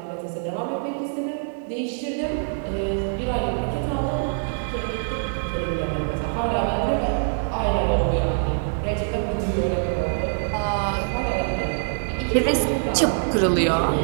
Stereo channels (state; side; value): silent; left; 62 dB below the other